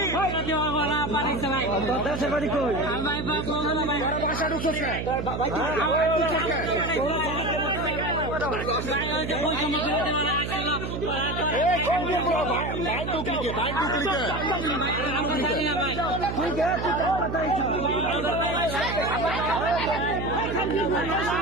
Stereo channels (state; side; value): noise; right; hum, 5 dB below the sound